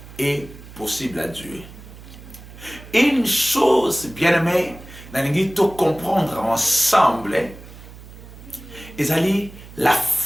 est possible à Dieu. Une chose, bien-aimé, nous devons comprendre ensemble, c'est la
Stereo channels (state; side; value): noise; right; hum, 17 dB below the sound